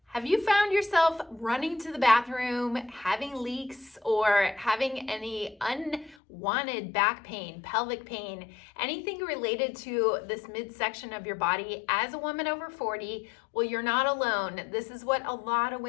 Have you found yourself running to the bathroom, having leaks, or having any unwanted back pain, pelvic pain, anything related to this midsection of your body as a woman over 40? Well, you're not alone. This is what a lot of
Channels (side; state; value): right; drops out; at 6.2 s